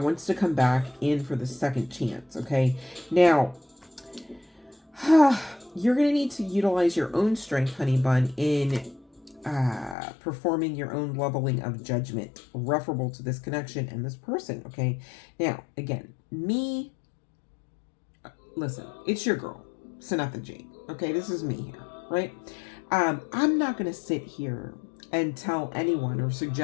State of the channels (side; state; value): right; drops out; at 10.0 s